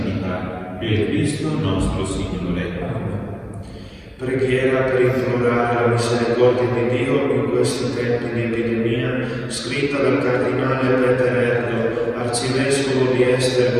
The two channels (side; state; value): both; identical; correlation 1.00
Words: per Cristo nostro Signore. Preghiera per implorare la misericordia di Dio in questi tempi di epidemia, scritta dal cardinale Peter Erdo, arcivescovo di